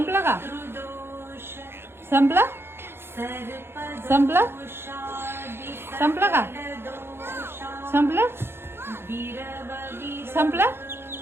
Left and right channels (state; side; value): late; left; 0.11 ms